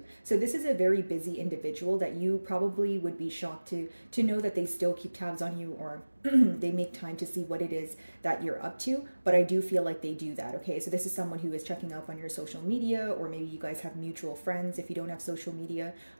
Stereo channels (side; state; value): both; inverted; correlation -1.00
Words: So this is a very busy individual that you probably would be shocked to know that they still keep tabs on you, or they make time to see what it is that you're up to, but I do feel like they do that, okay? So this is someone who is checking up on your social media, or maybe you guys have mutual friends if you don't have social media,